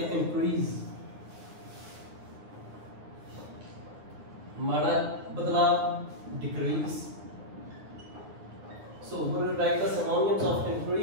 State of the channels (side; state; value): left; late; 9.5 ms